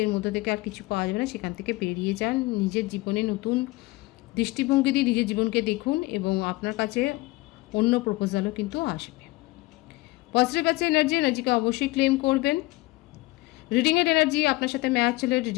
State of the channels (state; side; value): quieter; right; 21.1 dB